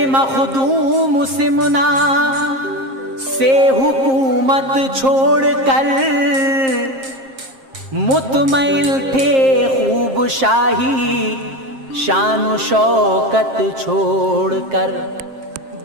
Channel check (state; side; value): late; left; 7.5 ms